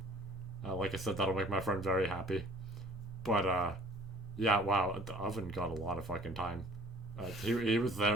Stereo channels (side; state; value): both; normal; correlation 0.52